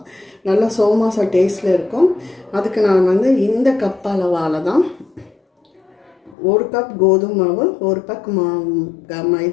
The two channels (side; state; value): right; drops out; at 6.4 s